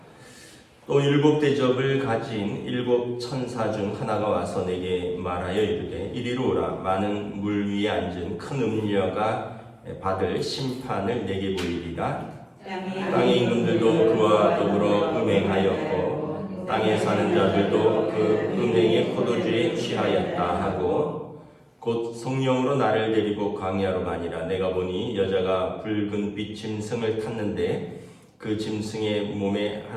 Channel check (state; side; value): identical; both; correlation 1.00